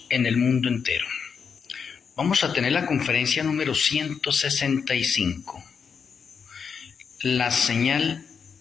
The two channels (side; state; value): right; quieter; 6.3 dB